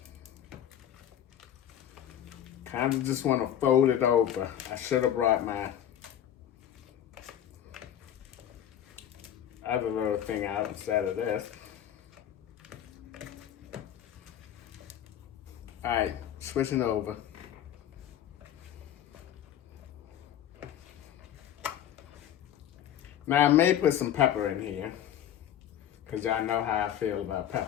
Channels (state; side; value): quieter; right; 10.5 dB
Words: Kind of just want to fold it over. I should have brought my other little thing out instead of this. All right, switching over. Now I may put some pepper in here, because y'all know how I feel about